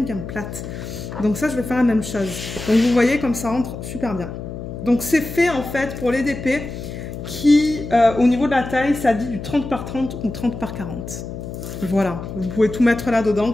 plates. Donc ça, je vais faire la même chose. Donc vous voyez comme ça rentre super bien. Donc c'est fait en fait pour les DP qui, au niveau de la taille, ça dit du 30 par 30 ou 30 par 40. Voilà, vous pouvez tout mettre là-dedans,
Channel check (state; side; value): noise; left; hum, 9 dB below the sound